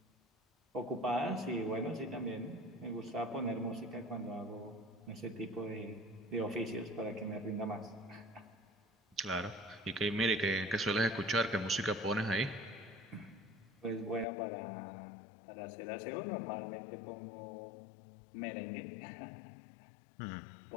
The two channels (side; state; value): right; drops out; at 14.2 s